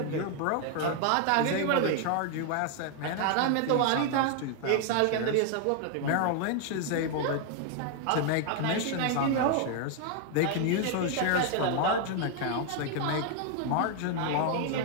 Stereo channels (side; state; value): both; different; correlation 0.00